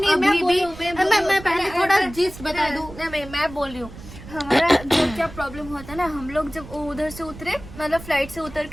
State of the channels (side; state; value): right; noise; rumble, 16 dB below the sound